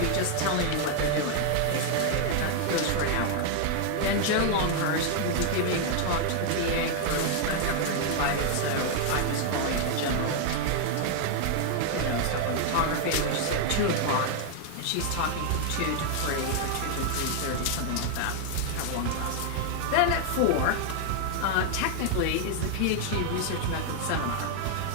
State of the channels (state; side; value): different; both; correlation 0.00